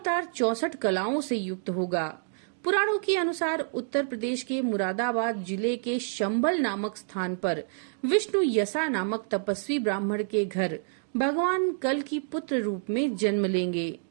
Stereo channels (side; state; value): left; silent; digital silence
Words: 64 कलाओं से युक्त होगा। पुराणों के अनुसार उत्तर प्रदेश के मुरादाबाद जिले के शंबल नामक स्थान पर विष्णु यसा नामक तपस्वी ब्राह्मण के घर भगवान कल की पुत्र रूप में जन्म लेंगे।